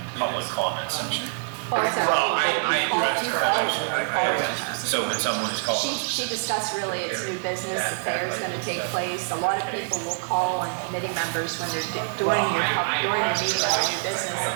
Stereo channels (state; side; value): silent; left; digital silence